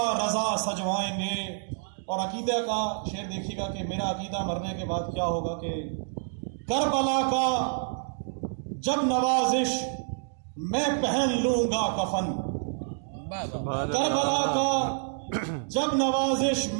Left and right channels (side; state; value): left; silent; digital silence